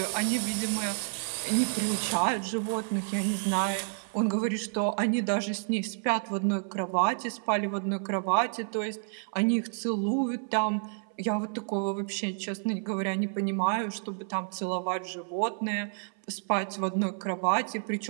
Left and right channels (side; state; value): left; silent; 58 dB below the other